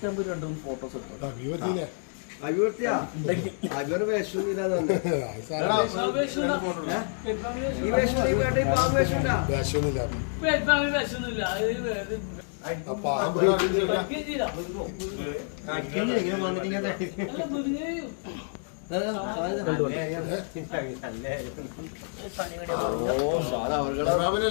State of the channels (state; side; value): silent; right; 58 dB below the other